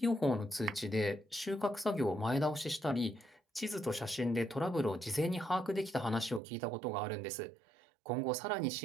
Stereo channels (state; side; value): drops out; left; at 6.4 s